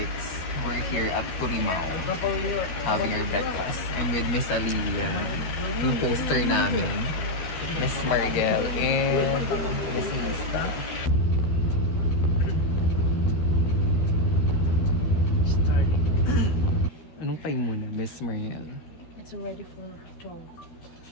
We're here at Turimao having our breakfast. I'm with Miss Alia, yung poster namin, Miss Mariel, and Miss Lista. Anong time muna, Miss Mariel? It's already for 12.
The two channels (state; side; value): late; right; 13 ms